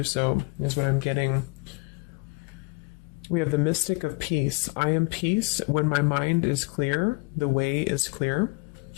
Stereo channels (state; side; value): quieter; right; 29.4 dB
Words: so, is what I'm getting. We have the Mystic of Peace. I am peace. When my mind is clear, the way is clear.